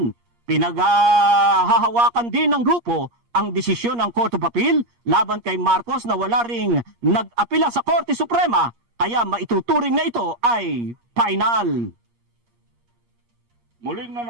Pinaghahawakan din ng grupo ang desisyon ng Court of Appeal laban kay Marcos na wala ring nag-apila sa Korte Suprema kaya maituturing na ito ay final. Muling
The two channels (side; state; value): left; late; 8.5 ms